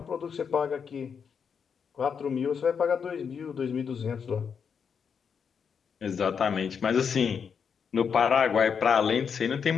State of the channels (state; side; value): quieter; right; 6.7 dB